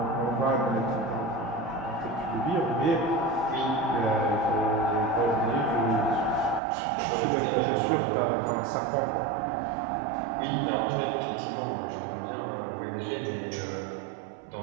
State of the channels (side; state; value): left; drops out; at 6.6 s